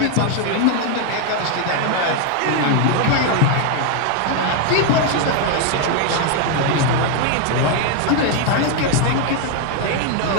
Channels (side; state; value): both; different; correlation 0.01